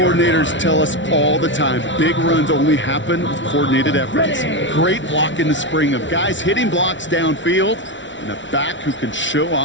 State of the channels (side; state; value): right; late; 0.55 ms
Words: tell us all the time, big runs only happen with coordinated efforts. Great block in the spring of guys hitting blocks downfield and a back who can show